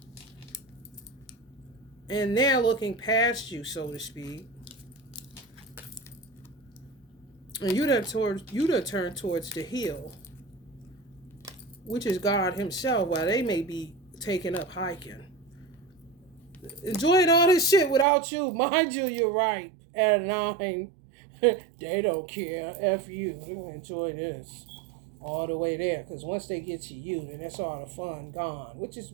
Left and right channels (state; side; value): drops out; left; at 18.1 s